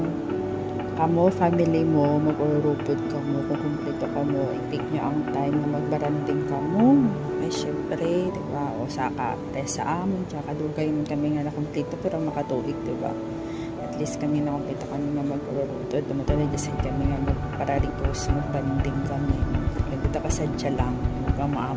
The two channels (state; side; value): identical; both; correlation 1.00